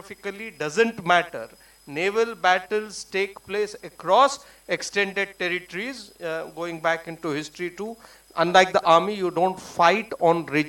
doesn't matter. Naval battles take place across extended territories, going back into history too. Unlike the army, you don't fight on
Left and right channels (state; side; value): identical; both; correlation 1.00